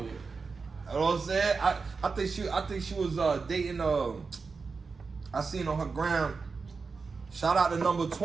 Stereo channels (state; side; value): quieter; left; 4.7 dB